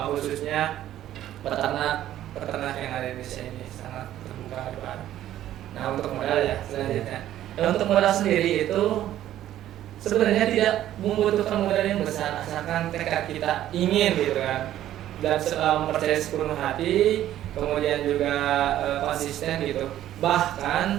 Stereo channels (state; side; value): quieter; left; 12.6 dB